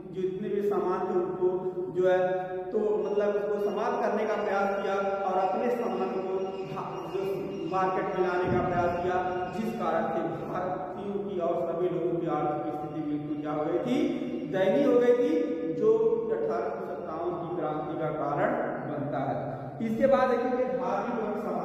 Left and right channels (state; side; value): identical; both; correlation 1.00